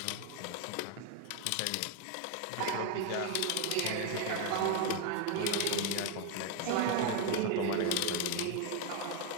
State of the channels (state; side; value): different; both; correlation 0.01